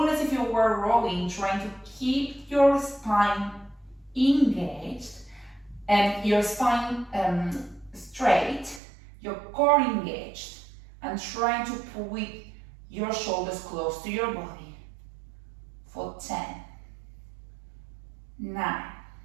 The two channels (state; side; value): drops out; left; at 8.8 s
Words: as if you were rowing, trying to keep your spine engaged and your spine straight, your core engaged, and trying to pull with your shoulders close to your body for 10, 9,